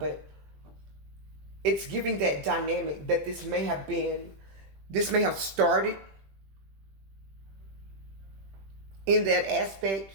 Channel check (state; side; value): late; left; 21 ms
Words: it's giving that dynamic that this may have started in that aspect.